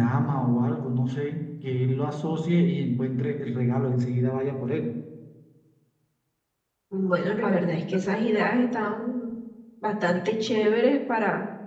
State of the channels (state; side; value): identical; both; correlation 1.00